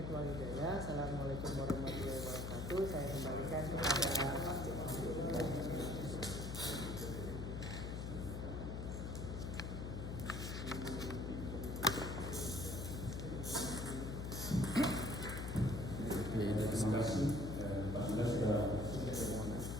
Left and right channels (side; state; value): left; noise; hum, 4 dB below the sound